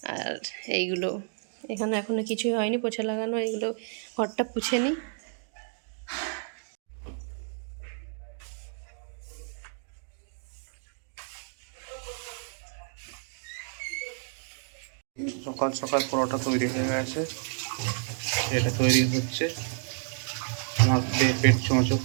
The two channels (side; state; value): left; silent; digital silence